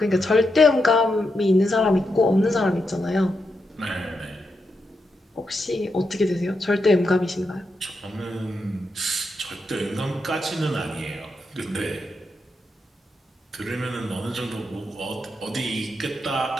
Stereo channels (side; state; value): both; normal; correlation 0.84